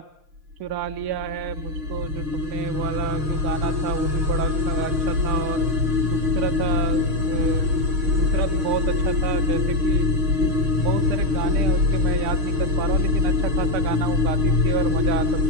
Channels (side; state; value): left; late; 6.5 ms